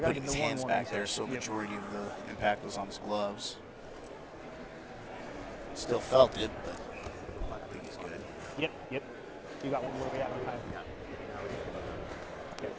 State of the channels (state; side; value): identical; both; correlation 1.00